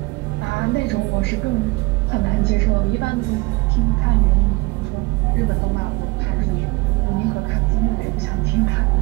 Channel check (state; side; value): quieter; left; 24.7 dB